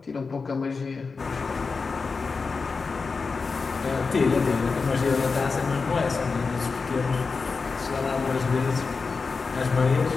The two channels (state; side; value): quieter; right; 4.6 dB